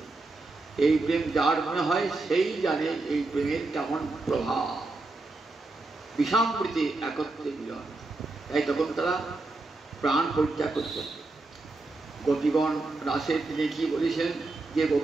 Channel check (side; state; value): left; quieter; 3.2 dB